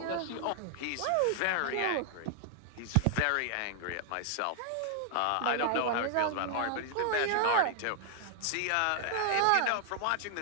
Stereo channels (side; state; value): both; different; correlation 0.00